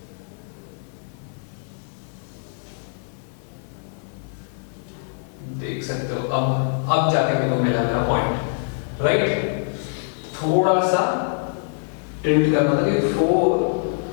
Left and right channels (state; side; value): silent; right; digital silence